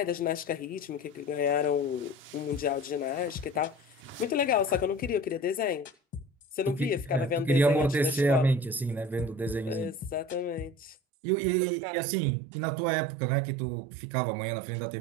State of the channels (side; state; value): left; drops out; at 11.0 s